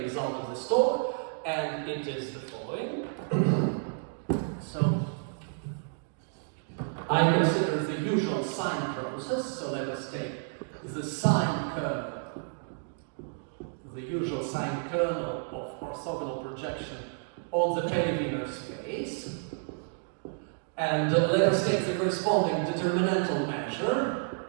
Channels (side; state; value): left; silent; 57 dB below the other